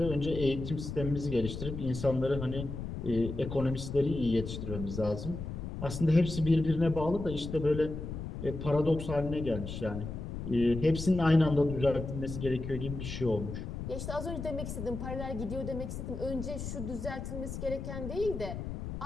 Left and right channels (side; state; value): left; noise; rumble, 6 dB below the sound